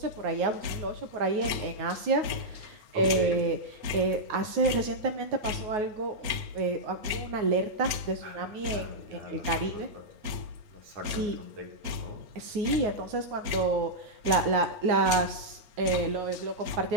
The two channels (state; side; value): late; left; 9.4 ms